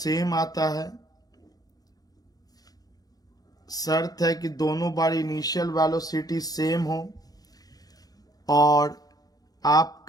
आता है। शर्त है कि दोनों बार इनिशियल वेलोसिटी सेम हो और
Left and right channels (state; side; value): late; right; 0.18 ms